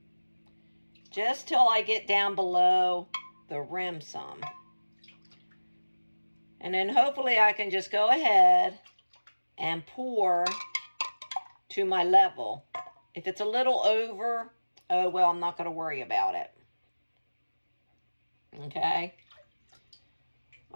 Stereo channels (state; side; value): inverted; both; correlation -1.00